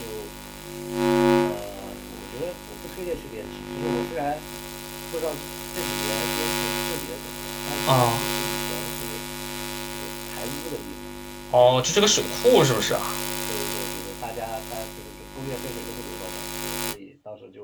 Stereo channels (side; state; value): both; identical; correlation 1.00